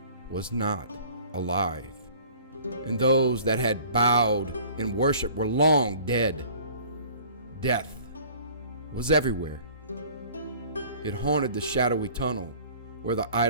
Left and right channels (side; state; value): both; inverted; correlation -0.49